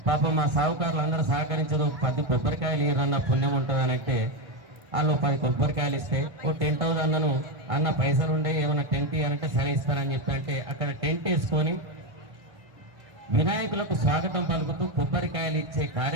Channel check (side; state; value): left; late; 1.5 ms